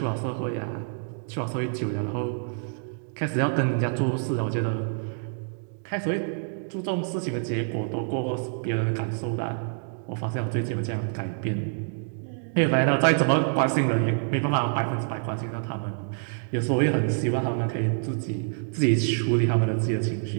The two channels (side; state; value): left; silent; digital silence